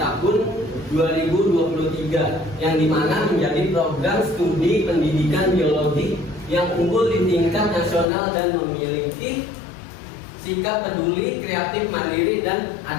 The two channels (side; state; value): right; drops out; at 8.1 s